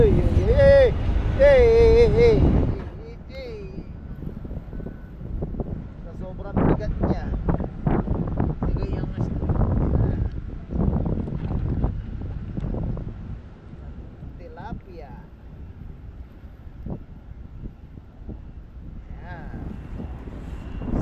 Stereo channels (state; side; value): identical; both; correlation 1.00